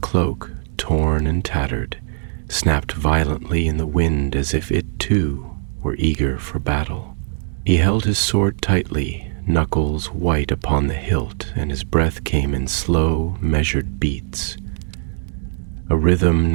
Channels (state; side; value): silent; left; digital silence